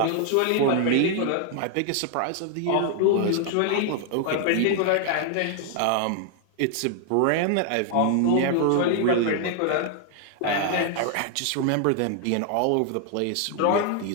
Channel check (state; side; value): different; both; correlation 0.00